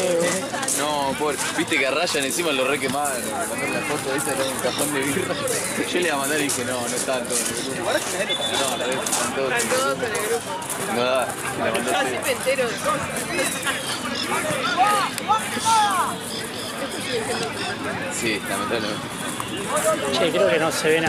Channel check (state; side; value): identical; both; correlation 1.00